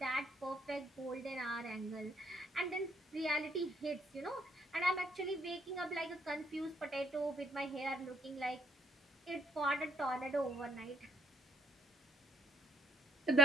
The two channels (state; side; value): normal; both; correlation 0.71